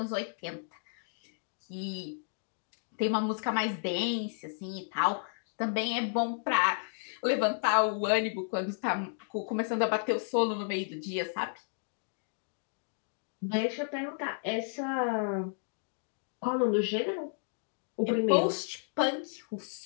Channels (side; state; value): right; silent; digital silence